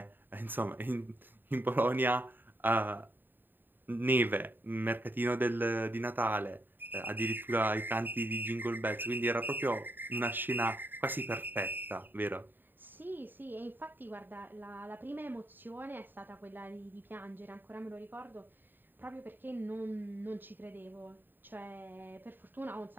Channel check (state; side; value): late; left; 0.092 ms